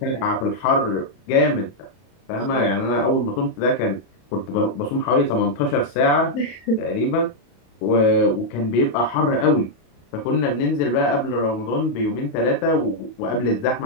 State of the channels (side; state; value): right; late; 31 ms